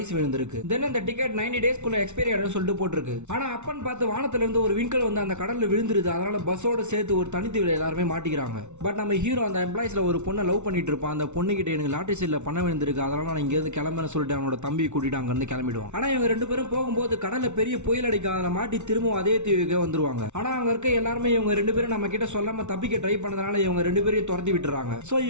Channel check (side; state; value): left; late; 0.82 ms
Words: விழுந்திருக்கு. தென் அந்த டிக்கெட் 90 டேஸ்க்குள்ள எக்ஸ்பைரி ஆயிடும் சொல்லிட்டு போட்டிருக்கு. ஆனா அப்பன் பார்த்து வானத்துல இருந்து ஒரு விண்கல் வந்து அந்த கடல்ல விழுந்துருது. அதனால பஸ்ஸோட சேர்த்து ஒரு தனித்தீவுல எல்லாருமே மாட்டிக்கிறாங்க. பட் நம்ம ஹீரோ அந்த எம்ப்ளாயிஸ்ல ஒரு பொண்ணை லவ் பண்ணிட்டு இருப்பான். அந்த பொண்ணு கிட்ட எனக்கு லாட்டரி சீட்ல பணம் விழுந்திருக்கு, அதனால நான் இங்க இருந்து கிளம்புறேன்னு சொல்லிட்டு அவனோட தம்பி கூட்டிட்டு அங்க இருந்து கிளம்பிடுவான். ஆனா இவங்க ரெண்டு பேரும் போகும்போது கடல்ல பெரிய புயல் அடிக்கும். அதில் மாட்டி திரும்பவும் அதே தீவுக்கு வந்துருவாங்க. ஆனா அங்க இருக்க எல்லாரும் இவங்க ரெண்டு பேரும் நம்ம கிட்ட சொல்லாம தப்பிக்க ட்ரை பண்ணதுனால இவங்க ரெண்டு பேரையும் துரத்தி விட்டுறாங்க. சோ